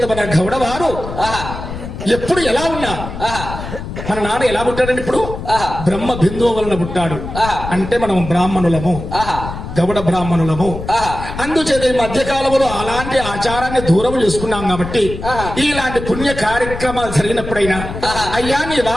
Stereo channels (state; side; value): noise; left; rumble, 9 dB below the sound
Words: మన గౌడవారు ఎప్పుడు ఎలా ఉన్నా మన నాన్న ఎలా పుట్టాడండి? ఇప్పుడు బ్రహ్మ బిందువు వలన పుట్టాడు. అంటే మనం బ్రాహ్మణులము, గౌడ బ్రాహ్మణులము. అందుచేత ఈ మధ్య కాలంలో అలాంటి ఆచారాన్ని దూరం చేసుకున్నాం కాబట్టి ఇలాంటి పుణ్య కార్యక్రమాలు జరిగినప్పుడైనా అయ్యా నీ